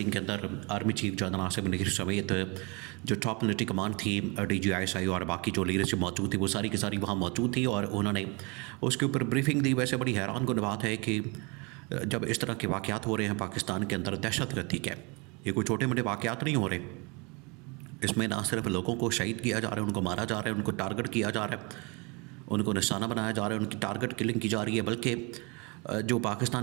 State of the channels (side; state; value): left; quieter; 29.7 dB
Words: کے اندر army chief general Asif Munir سمیت جو ٹاپ ملٹری کمانڈ تھی، D G I S I اور باقی جو لیڈرشپ موجود تھی، وہ ساری کی ساری وہاں موجود تھی اور انہوں نے اس کے اوپر بریفنگ دی۔ ویسے بڑی حیران کن بات ہے کہ جب اس طرح کے واقعات ہو رہے ہیں پاکستان کے اندر، دہشت گردی کے یہ کوئی چھوٹے موٹے واقعات نہیں ہو رہے، اس میں نہ صرف لوگوں کو شہید کیا جا رہا ہے، ان کو مارا جا رہا ہے، ان کو ٹارگٹ کیا جا رہا ہے، ان کو نشانہ بنایا جا رہا ہے، ان کی ٹارگٹ کلنگ کی جا رہی ہے، بلکہ جو